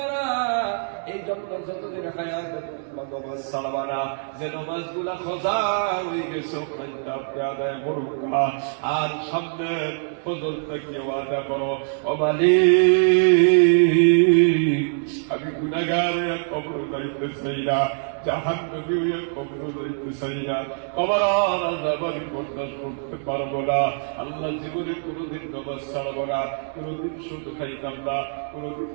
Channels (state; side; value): silent; left; digital silence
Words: এই জন্য যতদিন হায়াত নামাজ ছাড়বা না। যে নামাজ গুলা খোঁজা হয়ে গেছে আপনি আদায় করুন। আর সামনে ফজর থেকে ওয়াদা করো, ও মালিক, আমি গুনাহগার কবর যাইতে চাই না, জাহান্নামী হয়ে কবর যাইতে চাই না, কবর আযাব আমি বরদাস্ত করতে পারবো না। আল্লাহ, জীবনে কোনোদিন নামাজ ছাড়বো না, কোনোদিন সুদ খাইতাম না, কোনোদিন